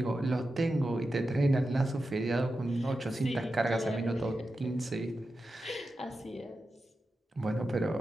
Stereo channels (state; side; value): normal; both; correlation 0.91